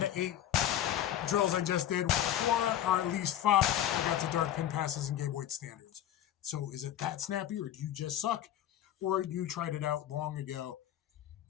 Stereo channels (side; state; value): right; quieter; 11.4 dB